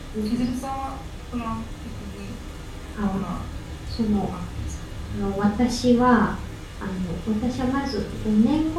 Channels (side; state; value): both; identical; correlation 1.00